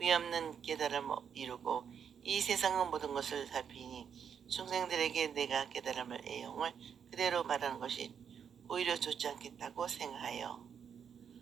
깨달음을 이루고 이 세상의 모든 것을 살피니 중생들에게 내가 깨달음을 애용을 그대로 말하는 것이 오히려 좋지 않겠다고 생각하여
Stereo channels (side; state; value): left; quieter; 7.6 dB